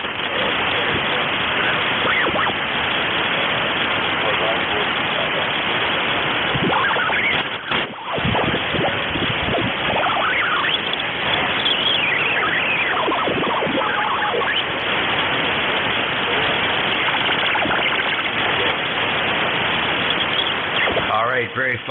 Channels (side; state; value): both; identical; correlation 1.00